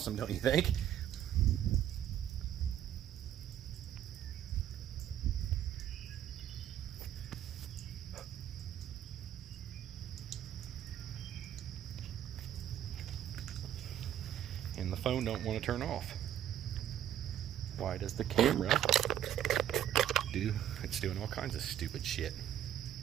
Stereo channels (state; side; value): quieter; left; 11.0 dB